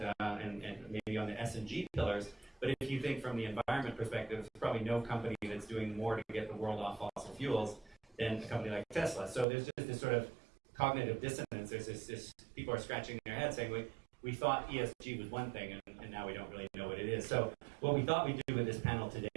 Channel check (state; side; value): drops out; left; at 9.5 s